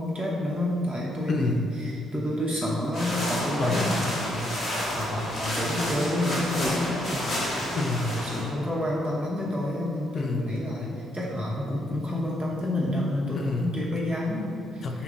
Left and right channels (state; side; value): normal; both; correlation 0.75